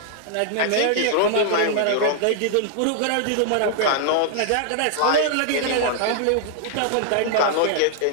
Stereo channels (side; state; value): both; different; correlation -0.01